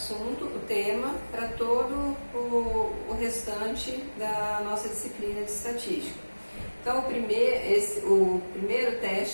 o tema para todo o restante da nossa disciplina de estatística. Então, o primeiro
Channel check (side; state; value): both; inverted; correlation -1.00